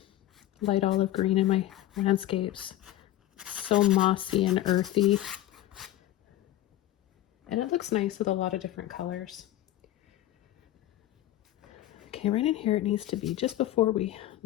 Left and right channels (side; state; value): right; quieter; 14.0 dB